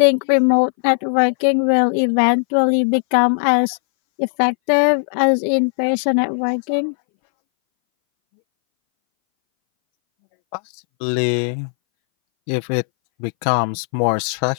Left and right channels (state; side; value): silent; right; 63 dB below the other